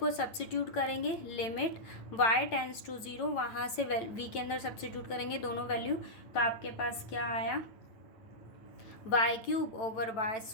सब्स्टिट्यूट करेंगे, limit y tends to zero, वहाँ से v के अंदर सब्स्टिट्यूट करेंगे दोनों value, तो आपके पास क्या आया, y cube over y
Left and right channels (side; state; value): right; late; 9.0 ms